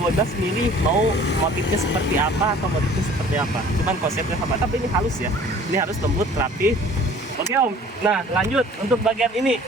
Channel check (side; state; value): both; normal; correlation 0.49